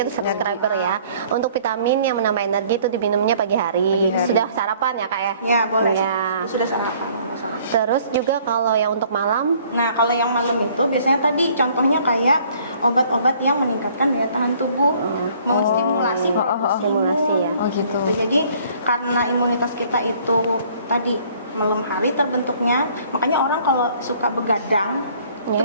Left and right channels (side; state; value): both; inverted; correlation -0.58